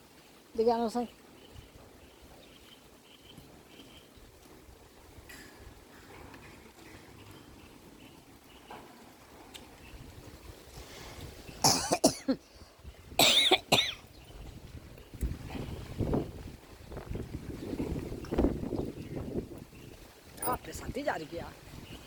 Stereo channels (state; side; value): identical; both; correlation 1.00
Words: দেখে আনো সাই। আপনি সাথে যা গিয়া